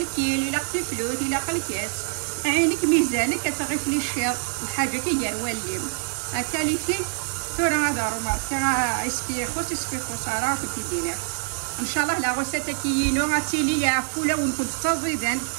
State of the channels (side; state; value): left; silent; 62 dB below the other